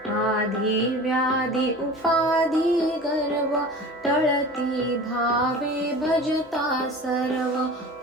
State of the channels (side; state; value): both; normal; correlation 0.38